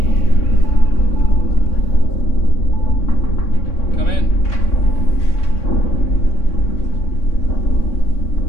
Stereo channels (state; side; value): late; right; 3.6 ms